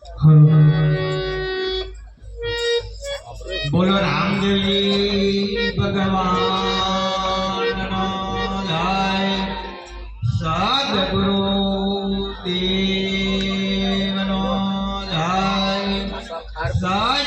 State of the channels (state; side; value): identical; both; correlation 1.00